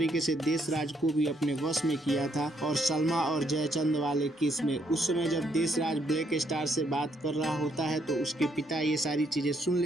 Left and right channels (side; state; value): both; normal; correlation 0.73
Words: से देशराज को भी अपने वश में किया था। और सलमा और जयचंद वाले केस में उस समय जब देशराज ब्लैक स्टार से बात कर रहा होता है, तो उसके पिता ये सारी चीजें सुन